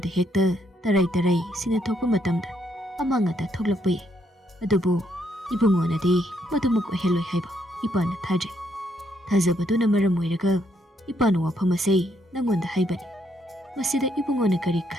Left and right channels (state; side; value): normal; both; correlation 0.74